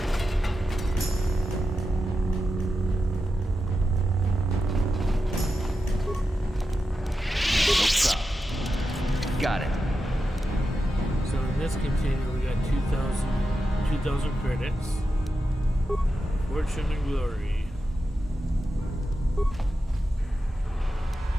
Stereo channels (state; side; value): normal; both; correlation 0.90